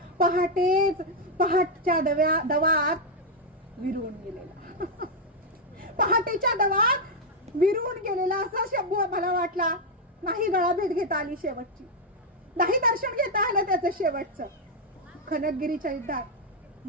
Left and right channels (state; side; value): normal; both; correlation 0.00